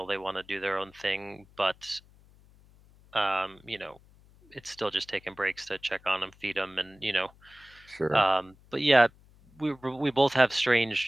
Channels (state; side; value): noise; left; hum, 27 dB below the sound